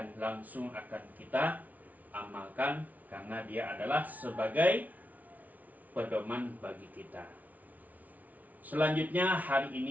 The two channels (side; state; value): left; late; 0.074 ms